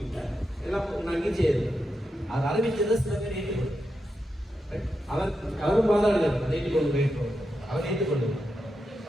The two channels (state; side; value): normal; both; correlation 0.86